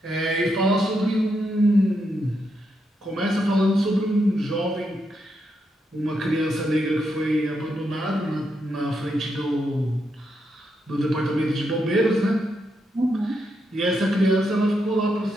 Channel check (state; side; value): normal; both; correlation 0.81